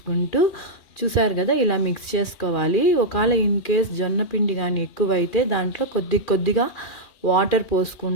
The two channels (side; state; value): right; late; 2.4 ms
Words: చూసారు కదా ఇలా మిక్స్ చేసుకోవాలి. ఒకవేళ ఇన్ కేస్ జొన్న పిండి కానీ ఎక్కువైతే దాంట్లో కొద్ది కొద్దిగా వాటర్